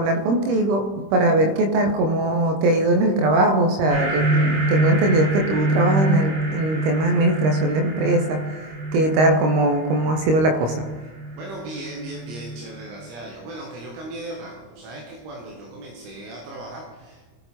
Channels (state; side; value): late; left; 26 ms